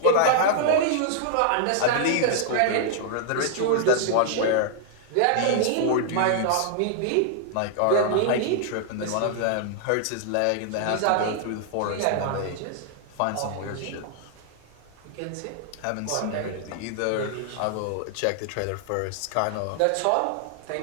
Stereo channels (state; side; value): different; both; correlation -0.01